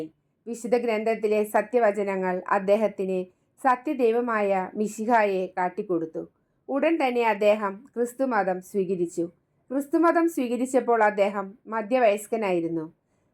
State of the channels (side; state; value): both; identical; correlation 1.00